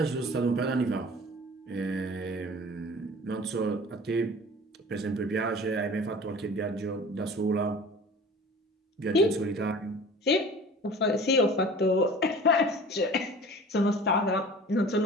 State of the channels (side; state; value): both; normal; correlation 0.42